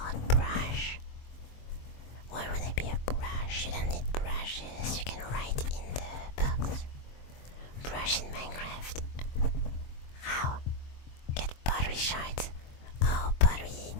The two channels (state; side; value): late; right; 23 ms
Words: brush. Why would there be a brush? You don't need brushes. You can write in the box. Brush in Minecraft. How? Get pottery shards. Oh, pottery.